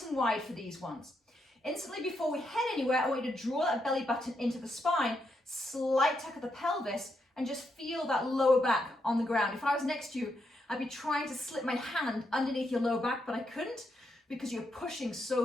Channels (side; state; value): both; normal; correlation 0.81